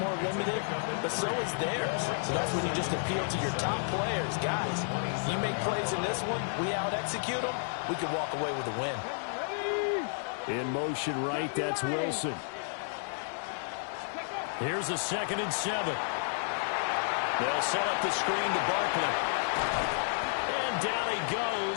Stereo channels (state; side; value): silent; right; 57 dB below the other